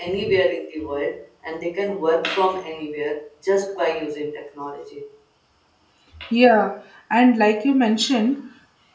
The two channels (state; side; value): identical; both; correlation 1.00